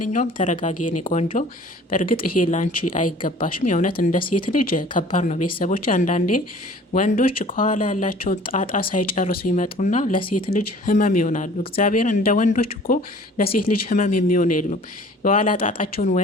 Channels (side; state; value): both; normal; correlation 0.49